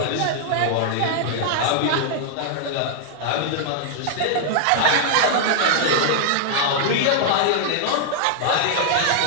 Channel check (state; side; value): different; both; correlation -0.01